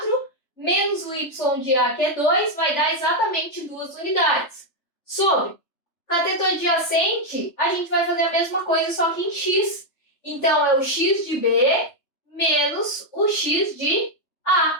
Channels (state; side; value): late; right; 3.3 ms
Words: menos o y de A, que é 2, vai dar exatamente 2 unidades. Sobre cateto adjacente, a gente vai fazer a mesma coisa, só que em x. Então, é o x de B menos o x de A.